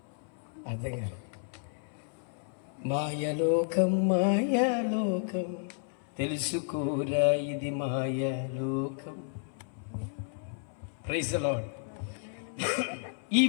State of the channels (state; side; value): silent; right; 56 dB below the other